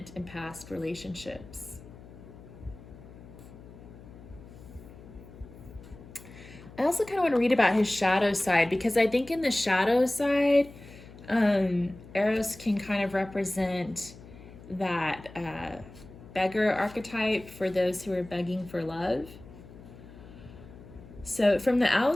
and past relationships. I also kind of want to read about his shadow side, because I think in the shadow side, Eros can kind of represent that beggar archetype for those who are begging for love. So from the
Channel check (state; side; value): noise; left; hum, 18 dB below the sound